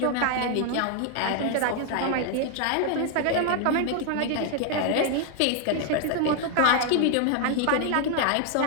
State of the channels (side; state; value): both; different; correlation 0.00